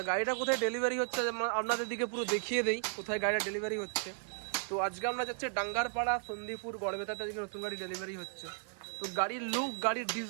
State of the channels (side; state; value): left; silent; 54 dB below the other